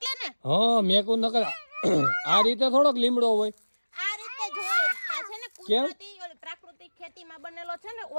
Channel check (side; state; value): both; inverted; correlation -1.00